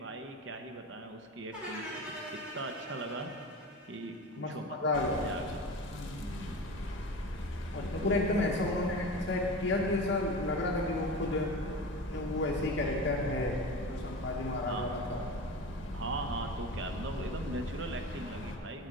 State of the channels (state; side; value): normal; both; correlation 0.31